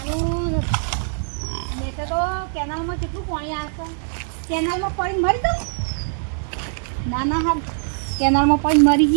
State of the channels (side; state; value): left; silent; digital silence